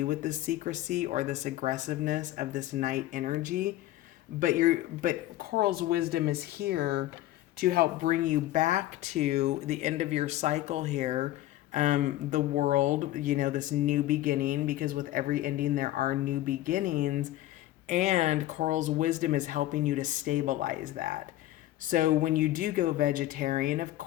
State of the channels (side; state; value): right; quieter; 15.1 dB